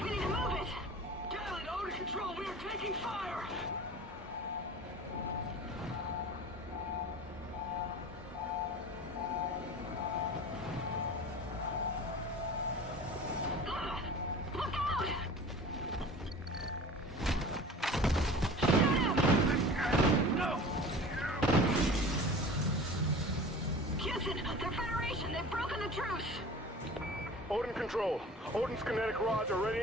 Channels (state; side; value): normal; both; correlation 0.39